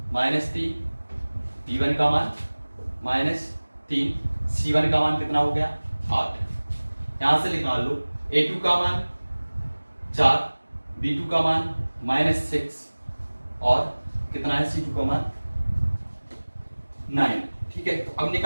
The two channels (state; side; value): inverted; both; correlation -1.00